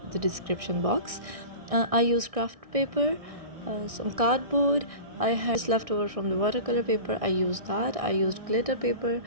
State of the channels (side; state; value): left; late; 1.6 ms